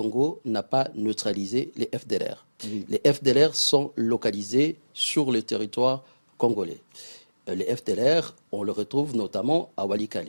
n'a pas neutralisé les FDLR. Oui. Les FDLR sont localisés sur le territoire congolais. Les FDLR, on le retrouve notamment à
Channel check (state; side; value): inverted; both; correlation -1.00